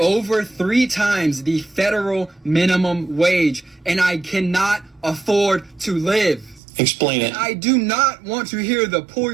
3 times the federal minimum wage and I cannot afford to live? Explain it. And I do not want to hear the pull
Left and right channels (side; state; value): left; drops out; at 6.6 s